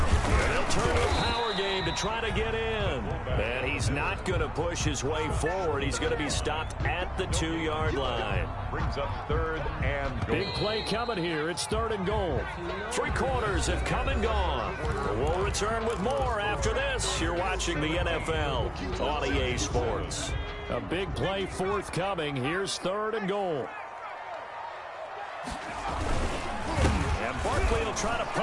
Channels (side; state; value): both; identical; correlation 1.00